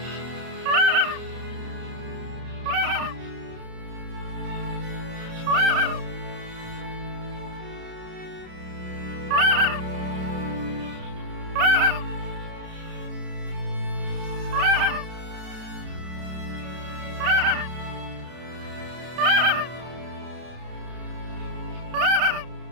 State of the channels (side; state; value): left; late; 32 ms